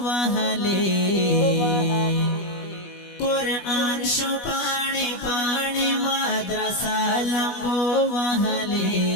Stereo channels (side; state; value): right; late; 21 ms